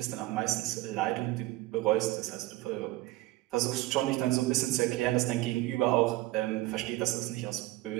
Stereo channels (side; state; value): left; quieter; 18.3 dB